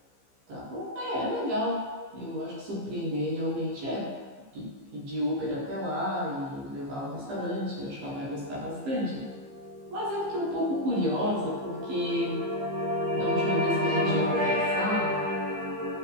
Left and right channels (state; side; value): late; left; 15 ms